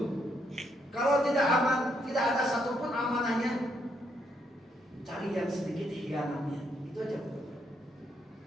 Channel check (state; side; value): normal; both; correlation 0.74